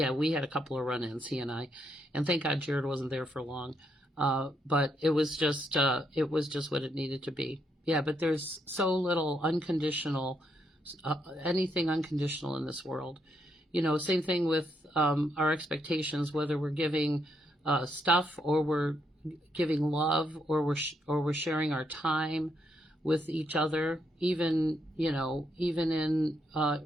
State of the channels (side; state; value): both; normal; correlation 0.77